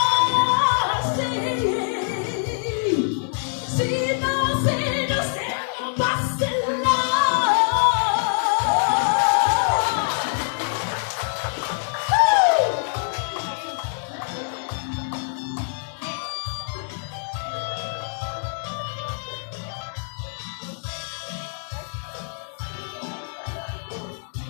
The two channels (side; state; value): right; silent; digital silence